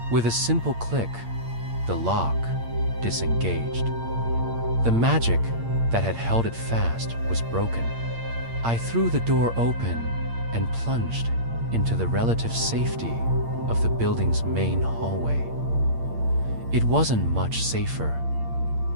With a simple click, the lock disengaged. The magic that had held it fast was broken. I threw the door open and plunged into the relative safety of the building's main hallway. It wasn't much safer.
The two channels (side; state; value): left; late; 8.7 ms